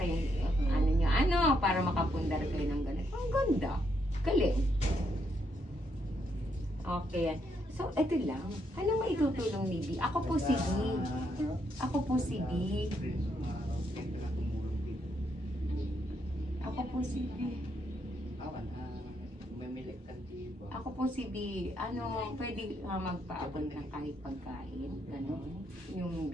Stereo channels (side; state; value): both; normal; correlation 0.77